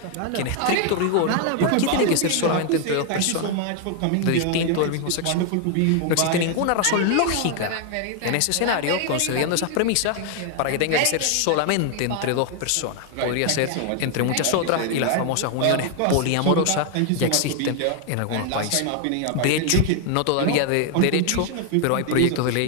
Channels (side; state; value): both; different; correlation 0.00